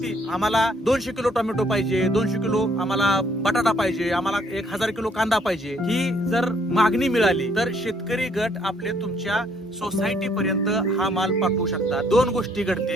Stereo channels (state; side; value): normal; both; correlation 0.66